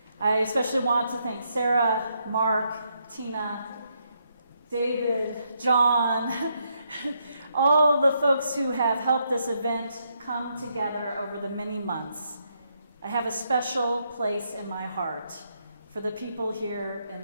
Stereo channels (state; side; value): inverted; both; correlation -0.77